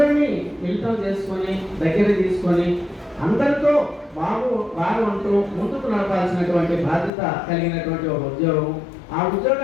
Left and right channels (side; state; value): right; drops out; at 7.1 s